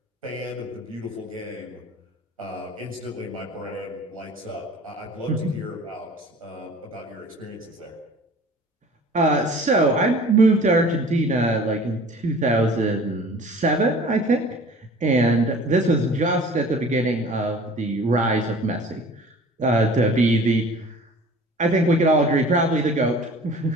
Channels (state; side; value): normal; both; correlation 0.45